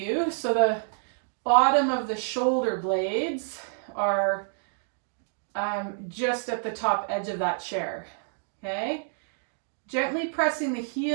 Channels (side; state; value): left; silent; digital silence